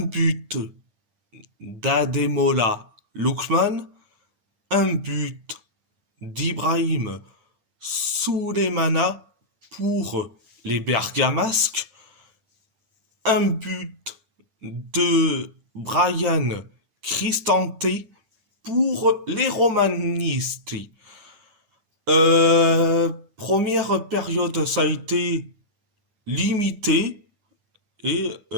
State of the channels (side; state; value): left; late; 8.9 ms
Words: d'Ademola Lookman, un but d'Ibrahim Souleymana pour les Bergamasques, un but de Brian Cristante pour les Romanisti. Première période, ça a été limité, et